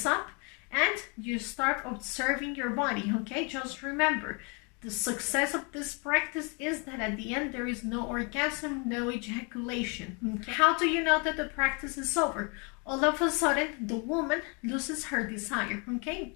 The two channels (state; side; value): quieter; right; 33.6 dB